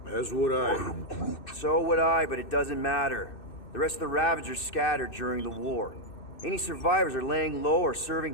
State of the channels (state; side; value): late; right; 2.6 ms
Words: As would I. So would I, but it doesn't matter. The rest of the Ravagers scattered during the war. Any survivors are laying low or